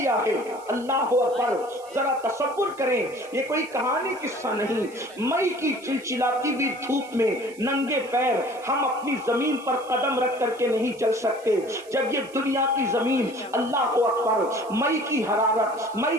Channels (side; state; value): right; noise; hiss, 23 dB below the sound